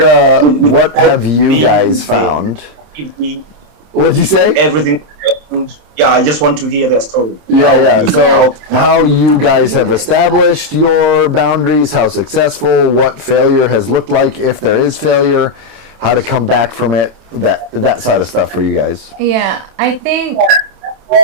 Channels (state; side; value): late; left; 27 ms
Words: have you guys found? What'd you say? Everything. Yeah, I just want to hear their story. Yeah. So how you guys have established your boundaries, how successful, what failure has looked like, if there is failure, how to come back from it, that side of stuff for you guys. Yeah, I think,